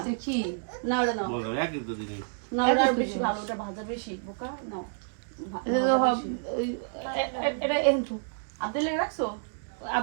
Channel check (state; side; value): silent; left; digital silence